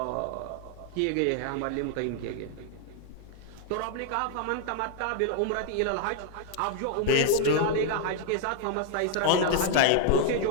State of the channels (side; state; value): both; different; correlation 0.00